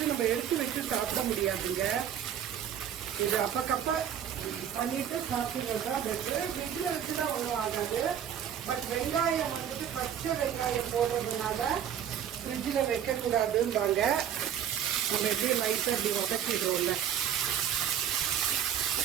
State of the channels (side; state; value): left; quieter; 9.3 dB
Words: நம்ம எடுத்து வச்சு சாப்பிட முடியாதுங்க. இது அப்பக்கப்ப பண்ணிட்டு சாப்பிடுறது தான் பெட்ரு. ஃப்ரிட்ஜில் வச்சுதான் ஒன்றும் ஆகாது. பட் வெங்காயம் வந்துட்டு பச்சை வெங்காயம் போடுறதுனால ஃப்ரிட்ஜில் வைக்கக்கூடாதும்பாங்க. நம்ம எப்படி லைட்டாக அப்படி வதக்கிடுவோம்ல,